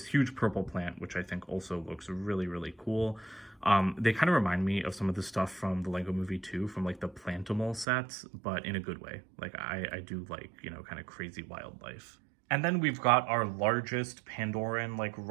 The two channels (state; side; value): drops out; left; at 7.9 s